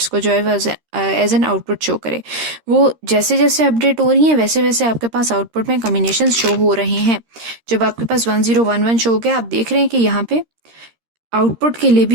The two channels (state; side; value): late; left; 13 ms